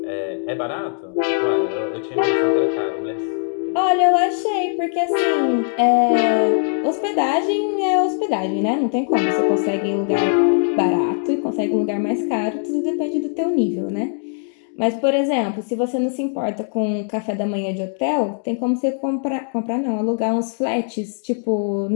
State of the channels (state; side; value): silent; right; 62 dB below the other